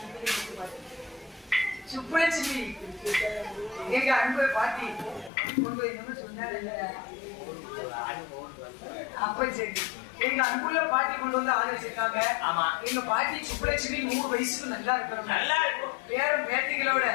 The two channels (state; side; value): drops out; right; at 5.3 s